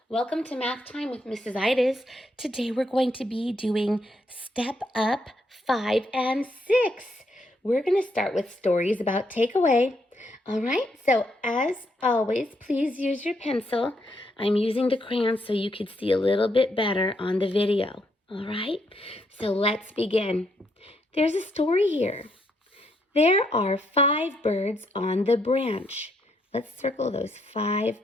Welcome to Math Time with Mrs. Itis. Today we're going to be doing Step Up 5 and 6. We're going to start with stories about takeaway. All right, so as always, please use your pencil. I'm using the crayon so you could see a little bit better on the video. All right, so let's begin. There's a story here. There are 5 birds on the branch. Let's circle those 5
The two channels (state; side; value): normal; both; correlation 0.75